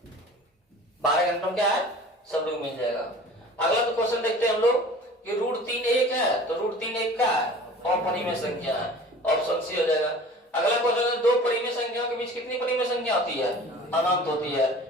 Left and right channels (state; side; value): normal; both; correlation 0.43